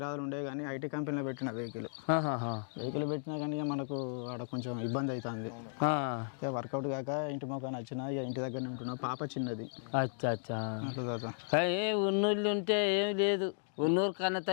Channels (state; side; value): silent; right; digital silence